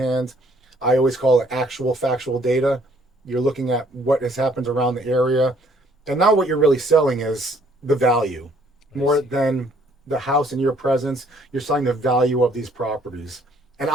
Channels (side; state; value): both; normal; correlation 0.63